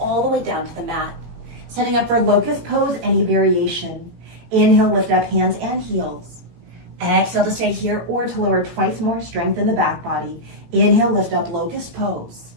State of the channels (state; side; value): late; left; 18 ms